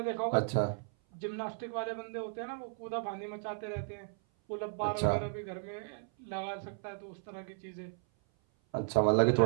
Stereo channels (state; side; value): silent; left; 54 dB below the other